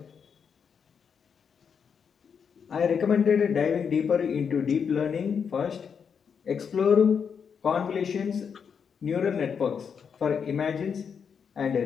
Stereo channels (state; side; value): quieter; right; 6.7 dB